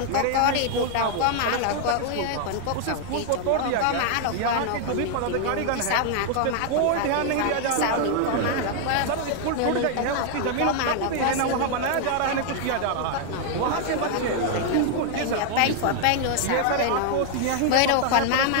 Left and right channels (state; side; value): different; both; correlation 0.00